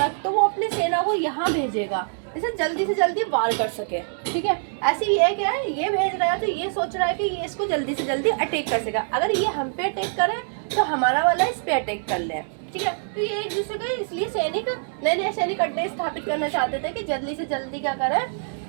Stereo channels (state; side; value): silent; left; digital silence